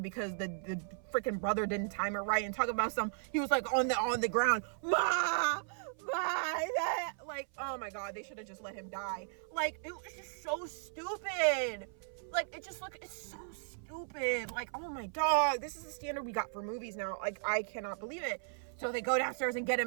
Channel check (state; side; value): silent; left; 54 dB below the other